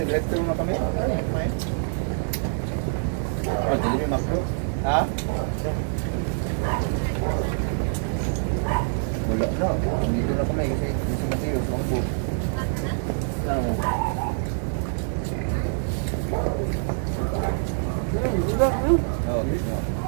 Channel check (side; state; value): left; silent; 58 dB below the other